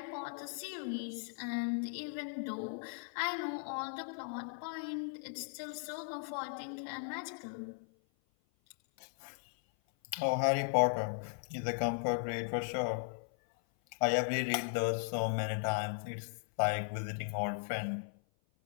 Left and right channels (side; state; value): right; silent; 53 dB below the other